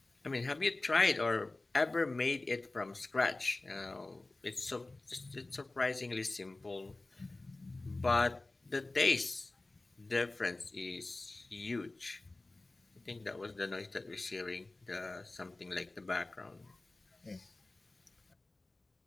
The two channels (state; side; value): quieter; right; 3.0 dB